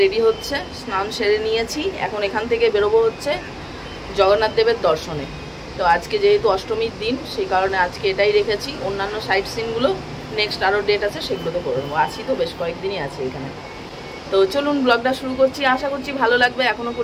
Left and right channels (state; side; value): identical; both; correlation 1.00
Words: রেডি হচ্ছে, স্নান সেরে নিয়েছি। এখন এখান থেকে বেরোবো হচ্ছে জগন্নাথ দেবের দর্শনে। তো আজকে যেহেতু অষ্টমীর দিন, সেই কারণে আজকে এটাই রেখেছি। অন্যান্য সাইট সিনগুলো নেক্সট আরও ডেট আছে, সেগুলোতে করে নেবো। আছি তো, বেশ কয়েকদিনই আছে এখানে। তো চলুন ব্লগটা শুরু করছি, আশা করছি ভালো লাগবে। এখনও